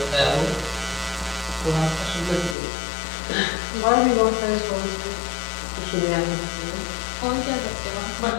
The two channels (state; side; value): drops out; right; at 2.6 s